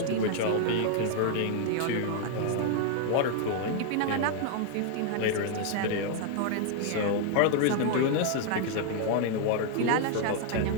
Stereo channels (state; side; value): different; both; correlation 0.00